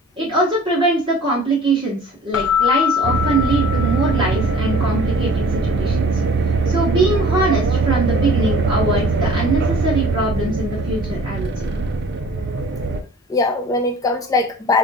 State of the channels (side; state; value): both; normal; correlation 0.49